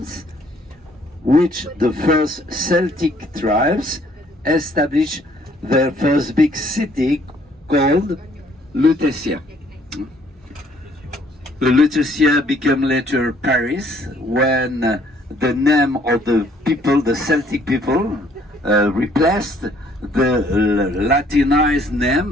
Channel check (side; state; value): both; normal; correlation 0.62